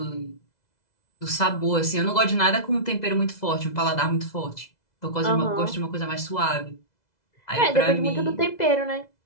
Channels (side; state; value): right; late; 2.0 ms